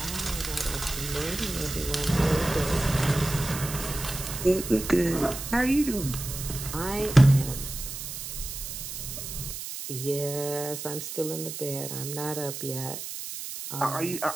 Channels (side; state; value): right; noise; hiss, 7 dB below the sound